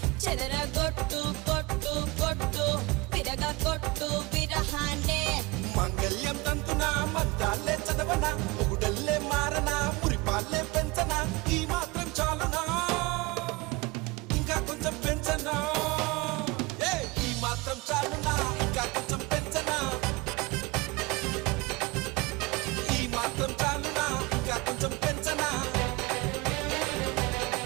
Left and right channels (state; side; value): quieter; left; 23.7 dB